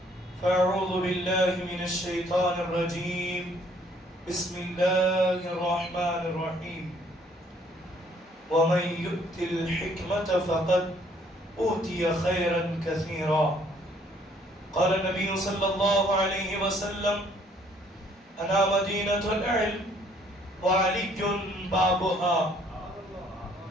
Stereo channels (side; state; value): both; normal; correlation 0.62